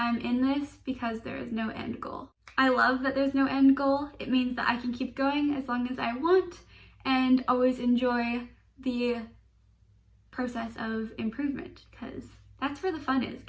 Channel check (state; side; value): identical; both; correlation 1.00